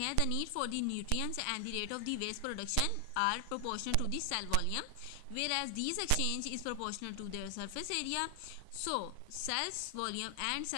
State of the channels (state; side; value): different; both; correlation 0.00